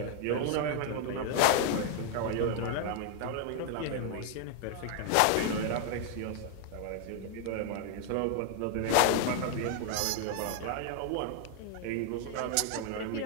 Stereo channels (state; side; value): different; both; correlation 0.00